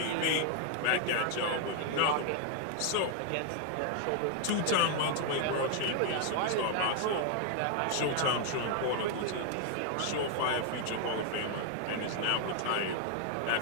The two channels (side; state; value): both; different; correlation 0.00